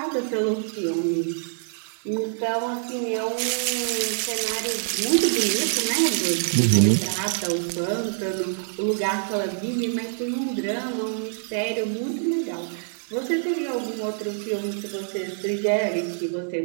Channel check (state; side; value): silent; left; digital silence